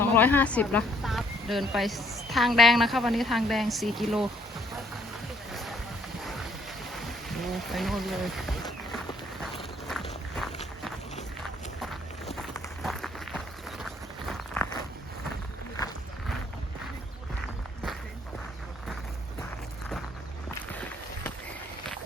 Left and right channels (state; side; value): normal; both; correlation 0.65